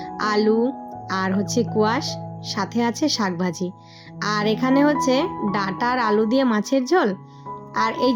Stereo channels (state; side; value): identical; both; correlation 1.00